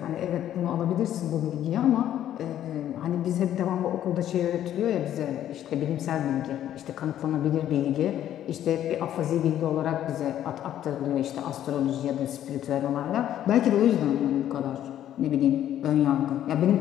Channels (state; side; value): quieter; right; 11.4 dB